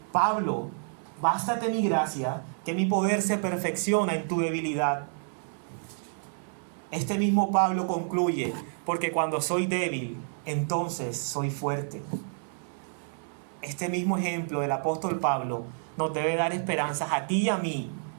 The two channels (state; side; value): silent; left; 59 dB below the other